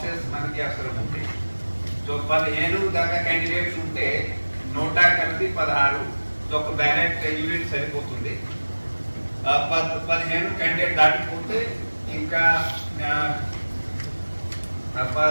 మనకి అవసరం ఉంటాయి. సో 15 దాకా క్యాండిడేట్స్ ఉంటే 100 కలిపి 16, సో ఒక బ్యాలెట్ యూనిట్ సరిపోతుంది. 15 క్యాండిడేట్ దాటిపోతే ఇంకా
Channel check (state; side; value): inverted; both; correlation -1.00